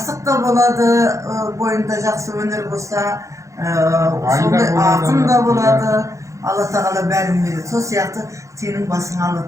da boladı, boyunda jakсы öneri bolsa, sonday akın da boladı. Allah Teala bärin berdi. Sol siyaktı senin basına Allah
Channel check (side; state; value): left; late; 0.15 ms